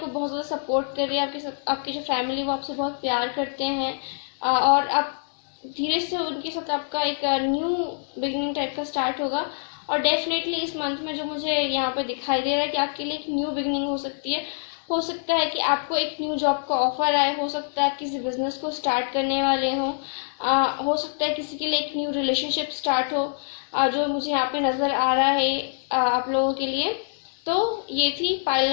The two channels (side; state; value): right; silent; digital silence